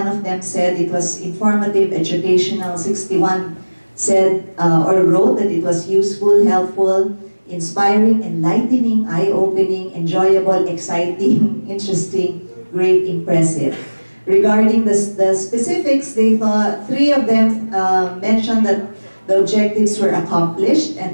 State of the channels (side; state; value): both; inverted; correlation -1.00